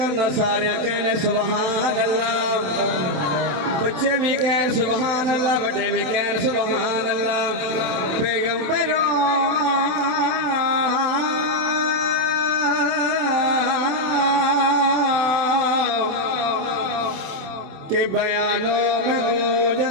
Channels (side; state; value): left; late; 27 ms